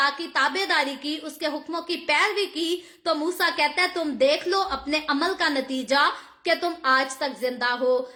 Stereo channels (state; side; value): identical; both; correlation 1.00